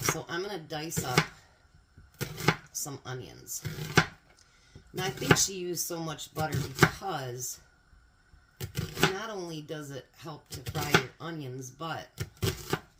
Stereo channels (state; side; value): identical; both; correlation 1.00